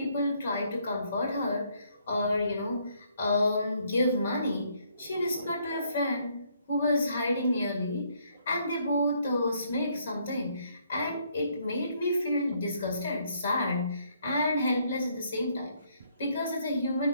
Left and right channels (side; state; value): both; inverted; correlation -0.69